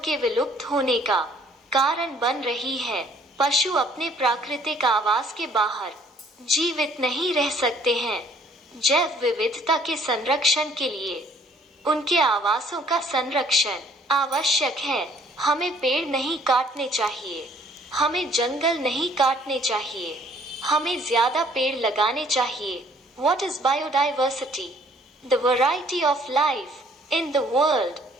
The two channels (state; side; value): normal; both; correlation 0.60